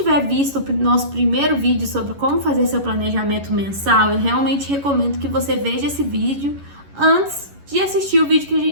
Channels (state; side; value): late; left; 11 ms